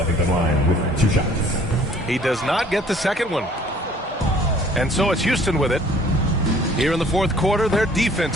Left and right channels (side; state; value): both; normal; correlation 0.56